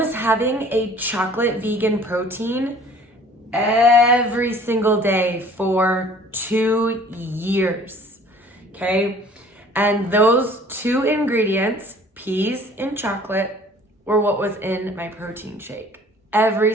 having a chocolate vegan protein every single day for 2 years, okay? And those 2 ingredients, peas and chocolate, were what was in my protein shake every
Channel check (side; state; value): both; normal; correlation 0.51